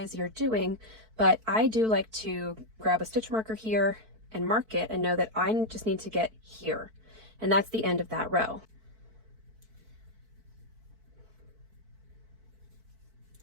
you're doing. But I do like to grab a stitch marker here and mark it and know that I just need to get here. And that's the end of that row.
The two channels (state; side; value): late; left; 4.5 ms